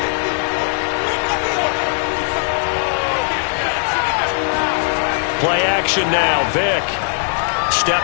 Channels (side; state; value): right; silent; 60 dB below the other